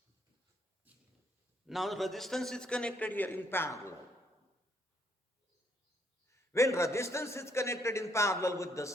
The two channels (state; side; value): normal; both; correlation 0.71